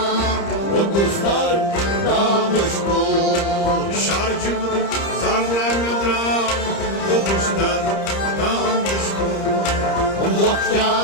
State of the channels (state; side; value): late; right; 30 ms